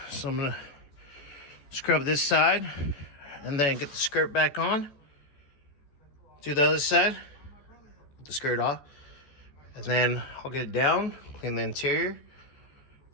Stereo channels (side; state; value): right; late; 14 ms